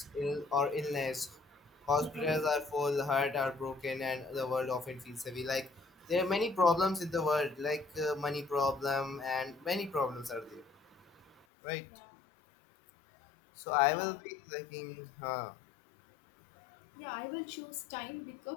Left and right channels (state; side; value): drops out; right; at 11.4 s